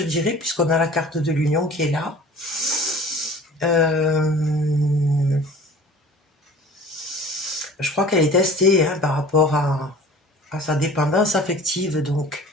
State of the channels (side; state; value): both; normal; correlation 0.44